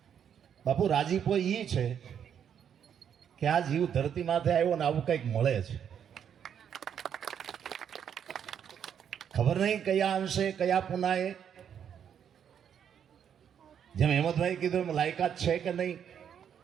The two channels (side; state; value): left; quieter; 8.5 dB